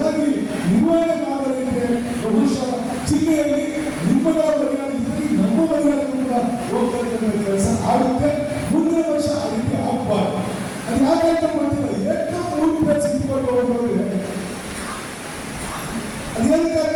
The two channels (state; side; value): identical; both; correlation 1.00